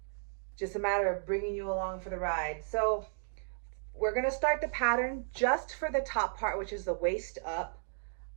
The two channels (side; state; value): left; silent; digital silence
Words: just a matter of bringing you along for the ride. So we're gonna start the pattern just for the top part, which is the waist up.